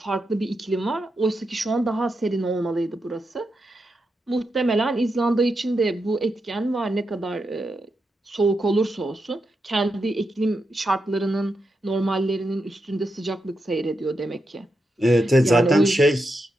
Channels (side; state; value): both; normal; correlation 0.86